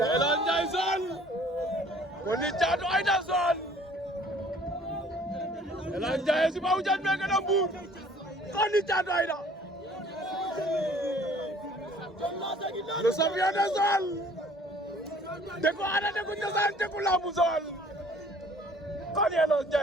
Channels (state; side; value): normal; both; correlation 0.54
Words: Jason Koni Caatu Aïda Son Elan Jason si ba hujan mereka nambur Koni Caatu Aïda le champion de Joal Deku ada Deku Cosaan Deku Lambu Joal Koni Elan